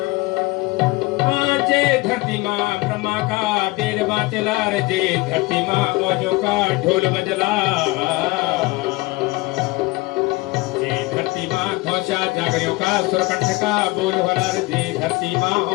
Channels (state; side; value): quieter; right; 22.3 dB